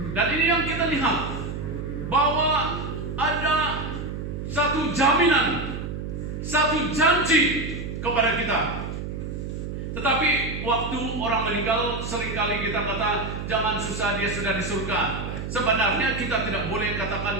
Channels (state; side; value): noise; right; hum, 6 dB below the sound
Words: Dan ini yang kita lihat, bahwa ada satu jaminan, satu janji kepada kita. Tetapi waktu orang meninggal, seringkali kita kata, jangan susah, dia sudah di surga. Sebenarnya kita tidak boleh